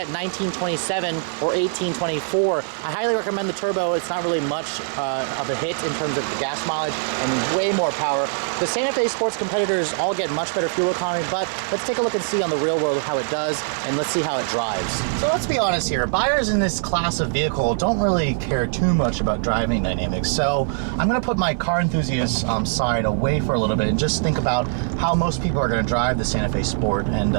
1927 or 1824. I highly recommend the turbo. It's not really much of a hit in terms of the gas mileage and way more power. The Santa Fe Sports competitors all get much better fuel economy, but let's take a look and see on the real world how it does, and let's see how it drives. So let's be honest here. Buyers in this class of vehicle don't really care too much about driving dynamics. So I'm going to put my car enthusiast side away for a little bit and just think about how most people are going to drive the Santa Fe Sport, and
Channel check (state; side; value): silent; left; digital silence